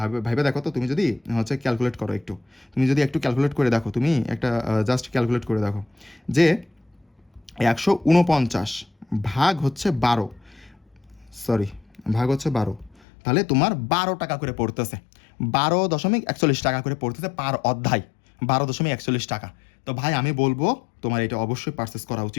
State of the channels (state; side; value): drops out; right; at 13.0 s